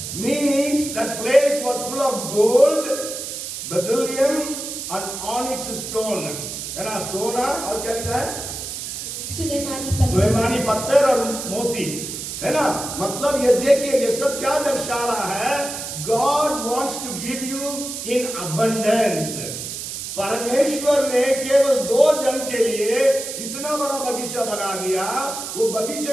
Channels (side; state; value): right; noise; hiss, 7 dB below the sound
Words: means that place was full of gold, beryllium and onyx stone। है ना, सोना और क्या लिखा है, सुलेमानी पत्थर और मोती, है ना। मतलब ये देखिए, ये सब क्या दर्शा रहा है, God wants to give you in abundance। परमेश्वर ने केवल 2 जन के लिए इतना बड़ा बगीचा बना दिया, वो